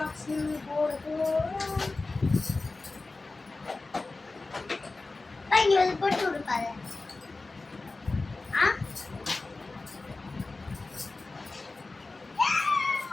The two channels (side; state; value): right; quieter; 3.5 dB